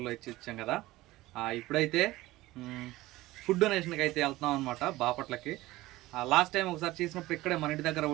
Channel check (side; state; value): left; quieter; 18.0 dB